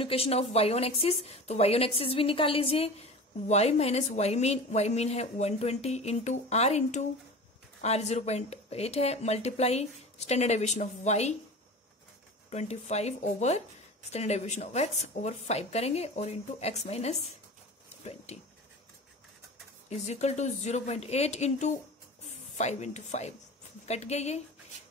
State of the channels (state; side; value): normal; both; correlation 0.34